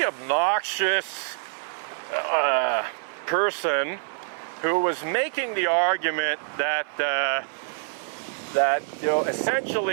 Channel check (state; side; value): silent; left; 61 dB below the other